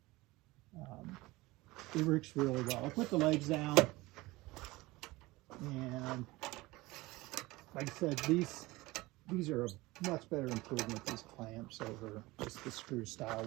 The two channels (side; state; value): left; quieter; 20.7 dB